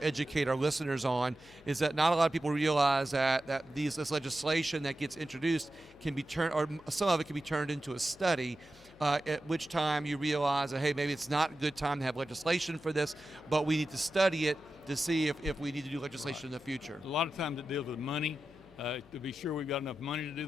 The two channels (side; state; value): left; noise; hum, 25 dB below the sound